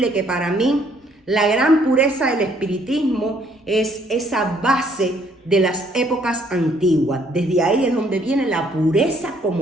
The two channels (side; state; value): both; normal; correlation 0.65